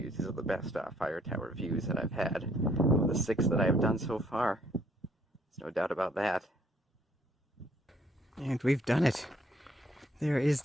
These are the best fire tower views that I've had. Of the 6 that I've done so far. There's no doubt about that. And we've done it. There is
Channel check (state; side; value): normal; both; correlation 0.66